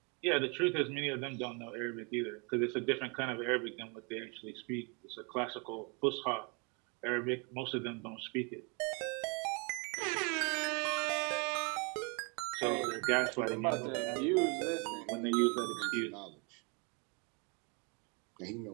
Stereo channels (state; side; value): quieter; left; 32.8 dB